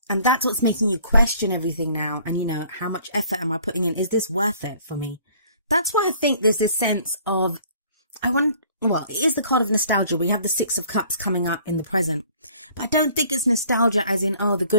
And that's what's making you question everything now. And, how much effort am I putting in? Is this worth it for me? That's why I think there's this sense of, it is the card of nostalgia. We have the Six of Cups coming up in the present. But I don't think it's nostalgia as in, the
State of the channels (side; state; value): both; inverted; correlation -0.56